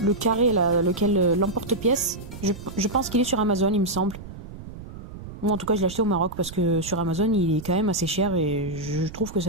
carré là, lequel l'emporte-pièce, Je pense qu'il est sur Amazon, il me semble. Ou en tout cas, je l'ai acheté au Maroc parce que sur Amazon, il est quand même assez cher et je trouve que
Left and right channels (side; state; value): right; noise; rumble, 13 dB below the sound